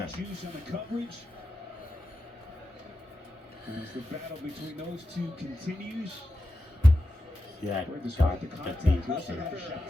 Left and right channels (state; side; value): normal; both; correlation 0.90